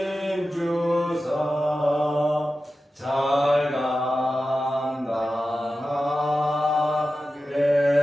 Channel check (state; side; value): normal; both; correlation 0.93